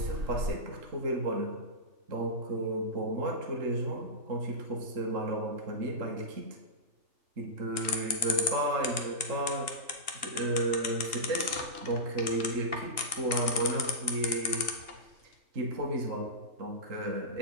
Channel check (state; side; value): late; left; 2.8 ms